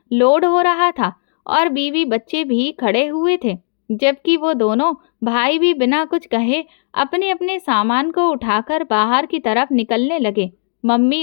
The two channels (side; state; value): right; silent; digital silence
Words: लोड हो रहा था और बीवी बच्चे भी खड़े हुए थे, जबकि वो दोनों भाई भी बिना कुछ कहे अपने अपने सामान को उठाकर बाहर की तरफ निकलने लगे।